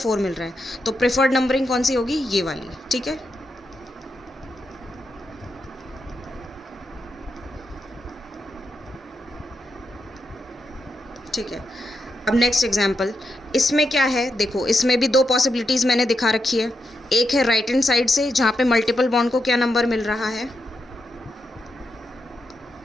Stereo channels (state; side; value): normal; both; correlation 0.84